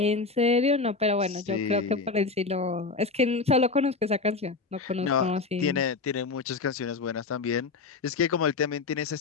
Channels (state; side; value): quieter; right; 4.2 dB